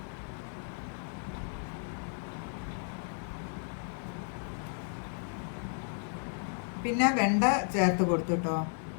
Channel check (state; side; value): silent; right; 55 dB below the other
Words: പിന്നെ വെണ്ട ചേർത്ത് കൊടുത്തു കേട്ടോ.